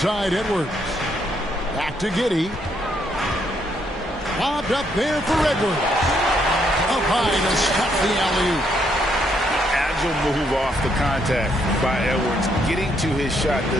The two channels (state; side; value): normal; both; correlation 0.73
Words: Edwards. Back to Giddey. Lobbed up there for Edwards. Up high to stop the alley-oop. Agile move off the contact by Edwards, getting to his shot